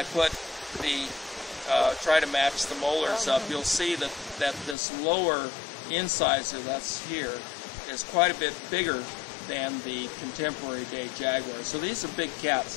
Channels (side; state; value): right; drops out; at 4.8 s